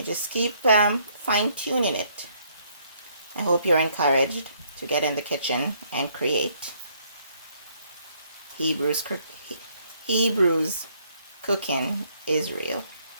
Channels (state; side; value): inverted; both; correlation -0.67